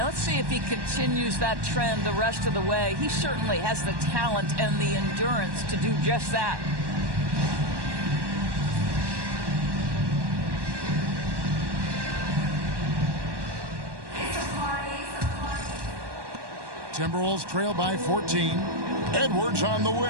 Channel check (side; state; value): left; late; 1.1 ms